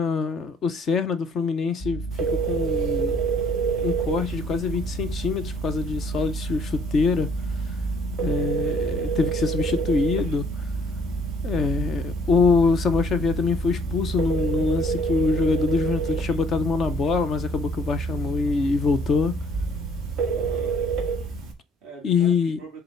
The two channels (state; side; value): normal; both; correlation 0.61